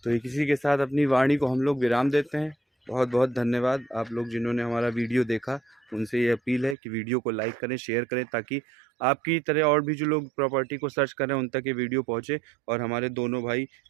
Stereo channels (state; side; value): drops out; left; at 6.8 s